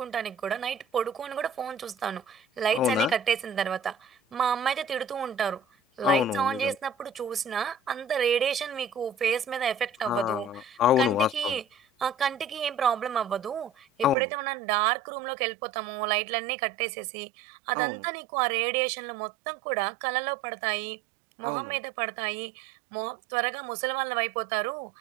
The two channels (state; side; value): drops out; left; at 14.2 s